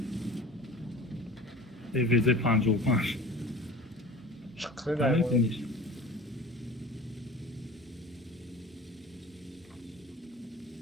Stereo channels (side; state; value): both; normal; correlation 0.40